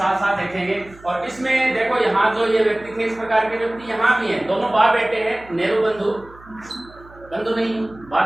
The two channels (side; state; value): right; noise; hum, 23 dB below the sound